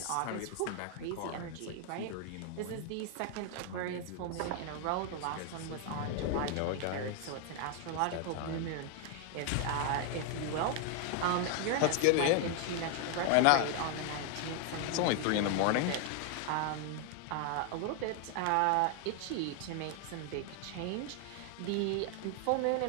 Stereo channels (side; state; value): both; different; correlation 0.00